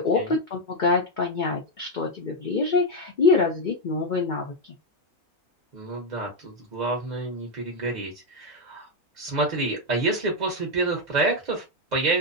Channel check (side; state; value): both; normal; correlation 0.03